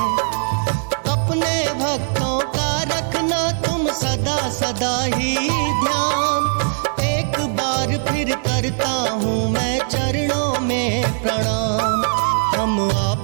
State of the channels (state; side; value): silent; left; digital silence